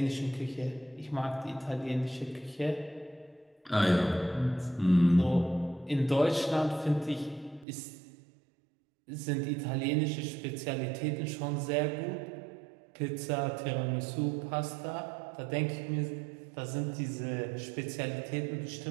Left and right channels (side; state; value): left; drops out; at 7.7 s